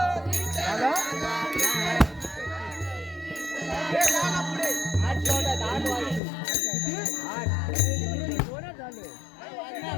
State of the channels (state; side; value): drops out; right; at 6.2 s